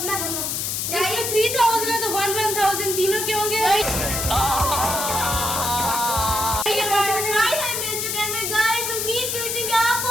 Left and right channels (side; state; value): left; noise; hiss, 1 dB below the sound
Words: 3000 है तो 1,000 तीनों के होंगे।